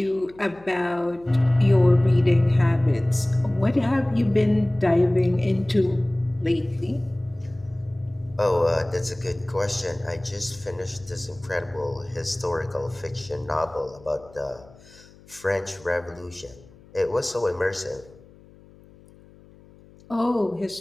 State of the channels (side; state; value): left; noise; hum, 25 dB below the sound